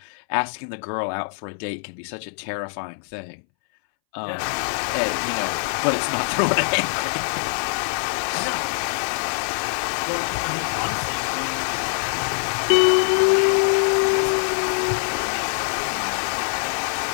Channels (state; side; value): silent; right; 62 dB below the other